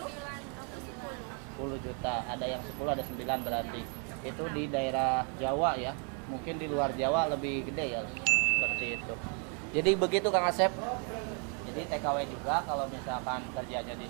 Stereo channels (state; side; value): quieter; left; 38.9 dB